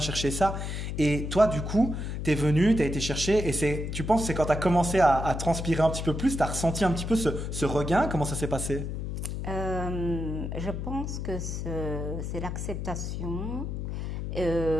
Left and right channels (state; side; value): noise; left; hum, 4 dB below the sound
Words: chercher ça. Et toi, du coup, t'es venu, t'as été chercher, et tu penses que c'est quand t'as commencé à transpirer un petit peu plus, t'as ressenti un petit peu ce regain. Comment ça s'est passé? Je pense que c'est l'acceptation.